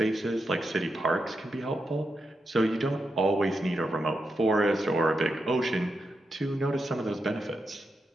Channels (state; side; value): normal; both; correlation 0.86